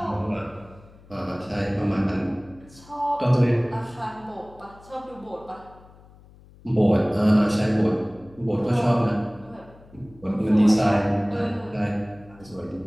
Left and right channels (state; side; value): noise; left; hum, 24 dB below the sound